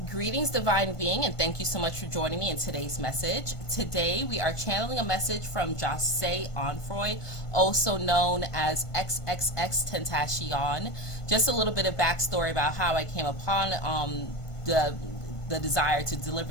Greetings, Divine Being, and thank you so much for joining me in today's message. Today, we are channeling a message from Jahseh Onfroy, also known as XXXTentacion. Just a little bit of backstory about how I came upon the desire to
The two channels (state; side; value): late; right; 1.5 ms